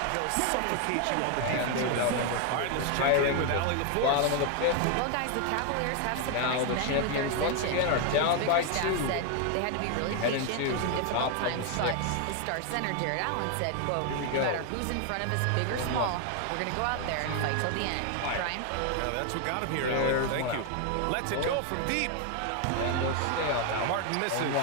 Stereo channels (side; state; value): both; different; correlation 0.01